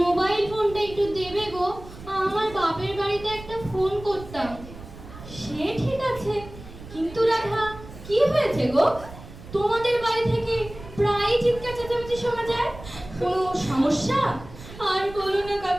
মোবাইল ফোনটা একটু দেবে গো, আমার বাপের বাড়িতে একটা ফোন করতাম। সে ঠিক আছে, কিন্তু রাধা কি হয়েছে গো? তোমাদের বাড়ি থেকে প্রায় চিৎকার চেঁচামেচি শোনা যায়, কোনো সমস্যা? আর বলো না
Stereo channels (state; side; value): noise; right; rumble, 15 dB below the sound